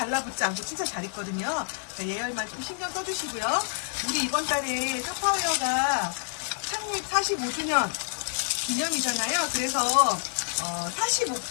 않고 진짜 잘 익거든요. 그러니까 예열만 좀 신경 써주시고요. 우리 이번 달에 샤파오어가 창립 45주년 기념이잖아요. 그래서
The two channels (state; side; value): silent; right; 59 dB below the other